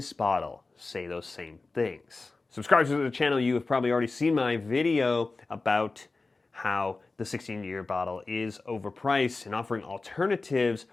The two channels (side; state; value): right; quieter; 3.7 dB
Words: bottle say those same things? Subscribers to the channel, you have probably already seen my video about how the 16-year bottle is overpriced and offering alternatives.